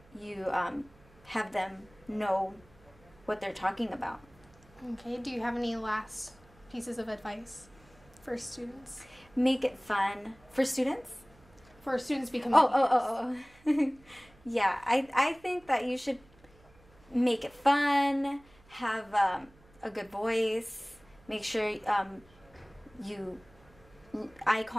you have them know what they're talking about. Okay, do you have any last pieces of advice for students? Make it fun. For students? For students becoming teachers. Yeah, I think that you should make it fun, have a good voice, make sure you eye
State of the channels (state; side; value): noise; right; hum, 27 dB below the sound